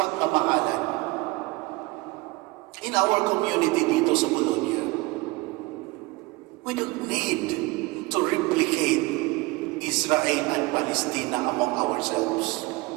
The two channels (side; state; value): left; quieter; 22.9 dB